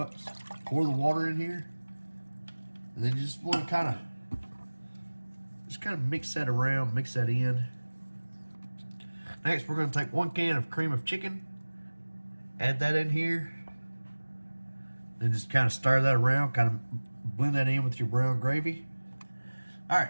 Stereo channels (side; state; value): both; inverted; correlation -1.00